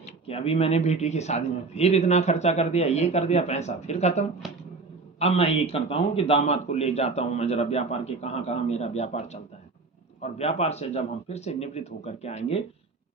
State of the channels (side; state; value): left; quieter; 4.0 dB